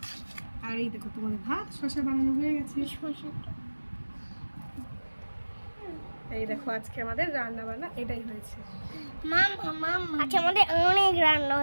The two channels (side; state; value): both; inverted; correlation -1.00